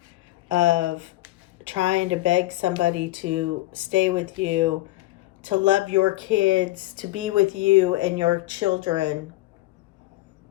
of trying to beg somebody to stay with you, to love your kids, to be with you and your children.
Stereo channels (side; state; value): right; quieter; 18.2 dB